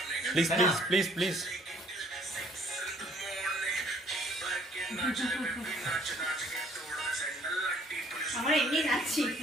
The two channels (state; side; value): normal; both; correlation 0.60